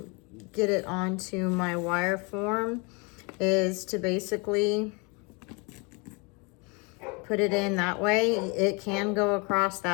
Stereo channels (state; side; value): quieter; right; 30.6 dB